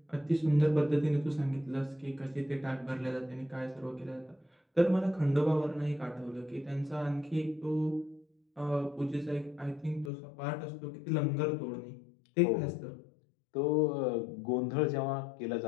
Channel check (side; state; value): right; drops out; at 10.1 s